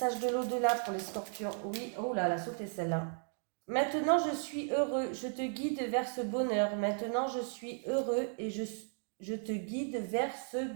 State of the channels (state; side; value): silent; left; 54 dB below the other